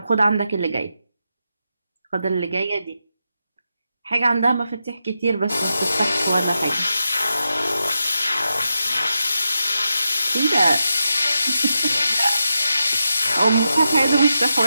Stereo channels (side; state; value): both; inverted; correlation -0.87